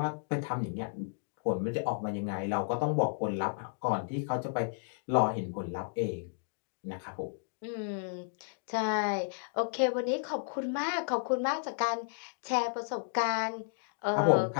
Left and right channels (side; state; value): right; silent; digital silence